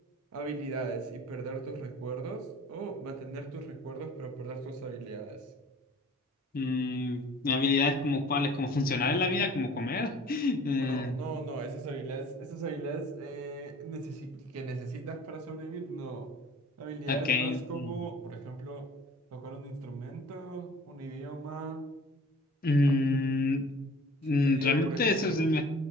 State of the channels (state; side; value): normal; both; correlation 0.47